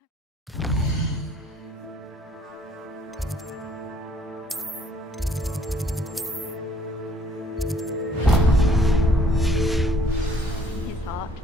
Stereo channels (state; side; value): normal; both; correlation 0.61